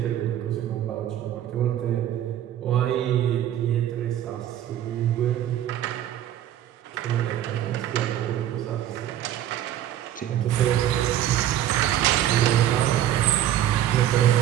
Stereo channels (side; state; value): left; quieter; 11.7 dB